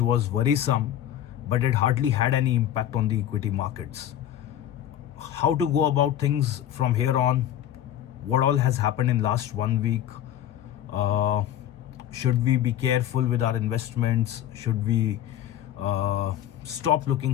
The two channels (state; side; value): quieter; right; 11.4 dB